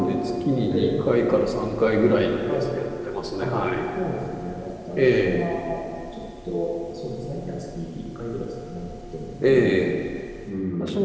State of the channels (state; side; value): identical; both; correlation 1.00